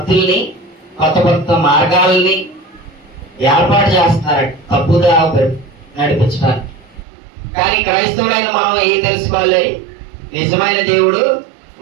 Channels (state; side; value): drops out; left; at 7.1 s